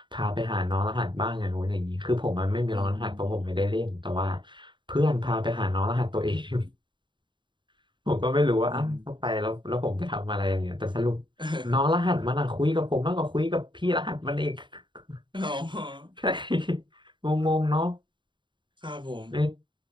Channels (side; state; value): left; late; 0.23 ms